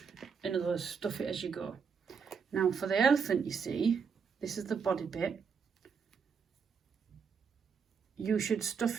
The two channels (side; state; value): left; quieter; 6.2 dB